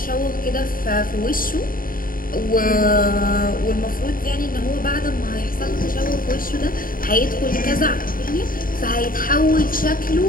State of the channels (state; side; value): late; right; 0.41 ms